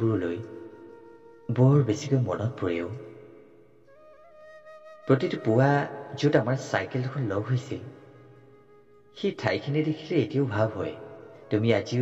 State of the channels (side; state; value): both; identical; correlation 1.00